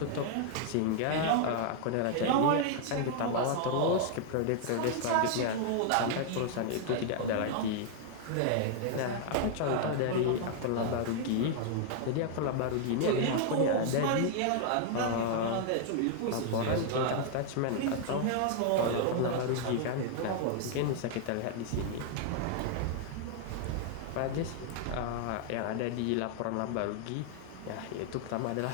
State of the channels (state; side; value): different; both; correlation 0.00